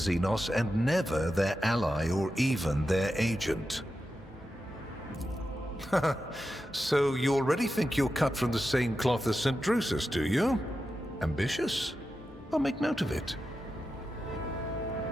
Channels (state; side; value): normal; both; correlation 0.90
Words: and never their ally or even their agent? So you already think you're cut from the same cloth as St. Drusus, do you? Ambitious? I'll make note of it.